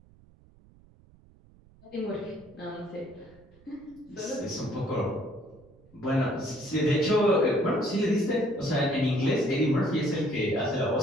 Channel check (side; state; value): right; noise; rumble, 27 dB below the sound